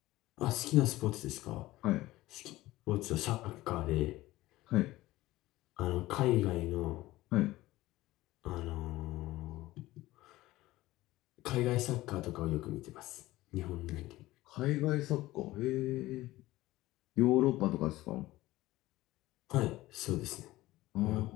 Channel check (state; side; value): quieter; right; 17.5 dB